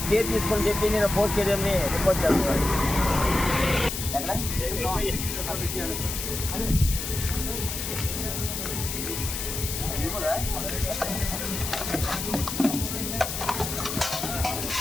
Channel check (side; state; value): left; noise; hiss, 4 dB below the sound